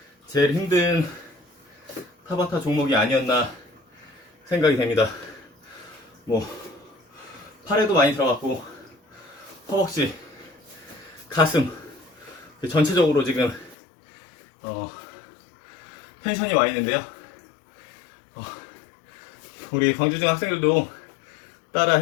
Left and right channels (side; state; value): right; drops out; at 13.8 s